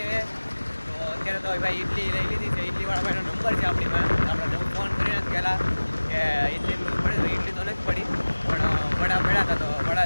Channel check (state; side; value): inverted; both; correlation -1.00